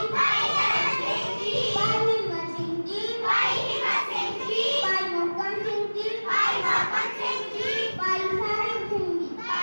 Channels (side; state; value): both; inverted; correlation -1.00